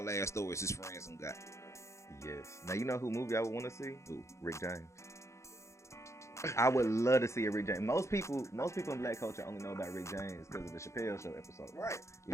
ass stories his friends done got. Yes. Now you know who movie I would want to see? Who? Rick James. I would love to see a Rick James. Most people in black culture only know about Rick James because of the Chappelle Show episode. Right. You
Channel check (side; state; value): right; late; 0.14 ms